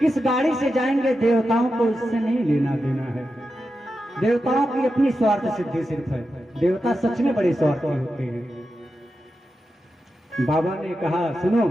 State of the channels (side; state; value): both; normal; correlation 0.89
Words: गाड़ी से जाएंगे, देवताओं को इससे नहीं लेना देना है। देवताओं की अपनी स्वार्थ सिद्धि सिर्फ है, देवता सच में बड़े स्वार्थी होते हैं। बाबा ने कहा सुनो,